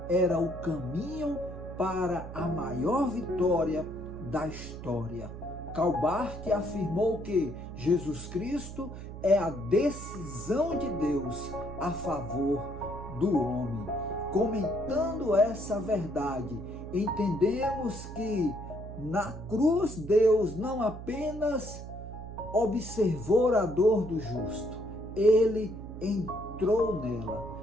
era o caminho para a maior vitória da história. Calbart afirmou que Jesus Cristo é a decisão de Deus a favor do homem. Comentando essa verdade, entendemos que na cruz Deus não apenas observou a dor do justo, ele entrou nela.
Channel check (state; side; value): noise; right; hum, 11 dB below the sound